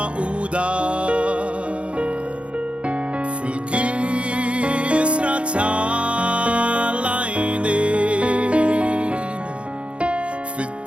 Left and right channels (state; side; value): late; left; 0.060 ms